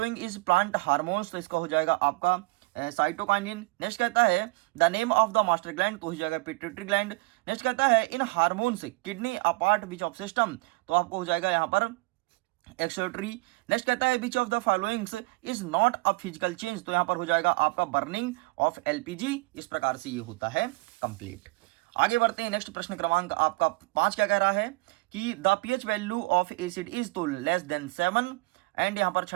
is plant hormones. तो इसका हो जाएगा आपका साइटोकाइनिन। नेक्स्ट कहता है the name of the master gland, तो हो जाएगा पिट्यूटरी ग्लैंड। नेक्स्ट कहता है in hormones kidney apart which of system, तो आपको हो जाएगा यहाँ पर एक्सोटरी। नेक्स्ट कहता है which of the followings is not a physical change, तो यहाँ पर हो जाएगा आपका बर्निंग ऑफ एलपीजी। इस प्रकार से ये होता है कंप्लीट। आगे बढ़ते हैं। नेक्स्ट प्रश्न क्रमांक आपका 5 क्या कह रहा है कि the pH value of acid is तो लेस देन 7, एंड यहाँ पर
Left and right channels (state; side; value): quieter; left; 25.6 dB